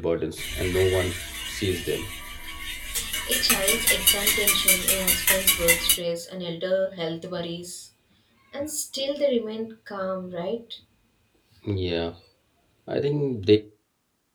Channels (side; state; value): both; identical; correlation 1.00